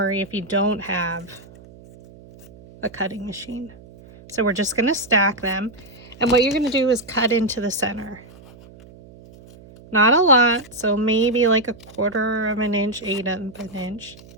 if you don't have a cutting machine. So we're just going to stack them. And what you're going to do is cut into the center. Not a lot, so maybe like 1/4 of an inch, 1/8 of an inch.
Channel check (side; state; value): right; noise; hum, 21 dB below the sound